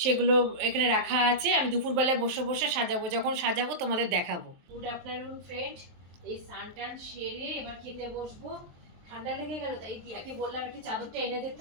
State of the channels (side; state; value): left; late; 23 ms